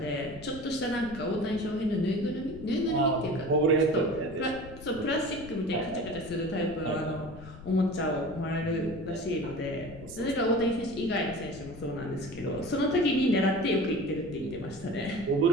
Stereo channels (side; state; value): left; noise; rumble, 16 dB below the sound